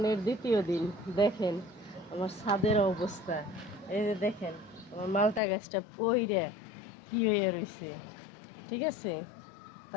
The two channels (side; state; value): right; drops out; at 5.4 s